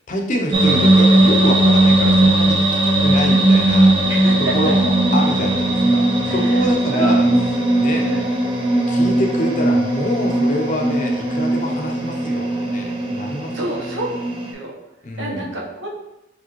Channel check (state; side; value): normal; both; correlation 0.77